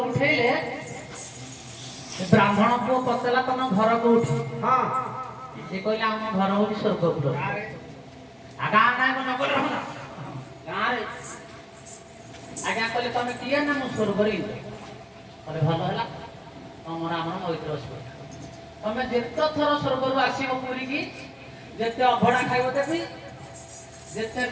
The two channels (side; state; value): both; identical; correlation 1.00